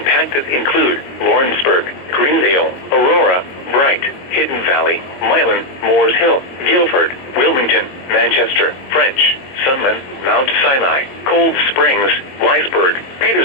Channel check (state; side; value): late; right; 22 ms